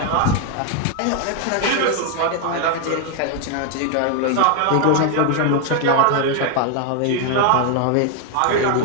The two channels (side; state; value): both; different; correlation 0.01